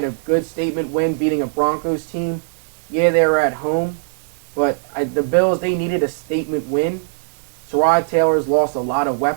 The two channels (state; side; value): silent; left; 66 dB below the other